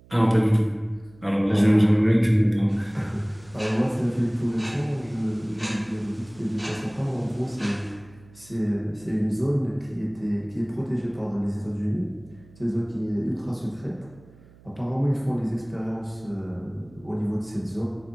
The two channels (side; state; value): right; noise; hum, 24 dB below the sound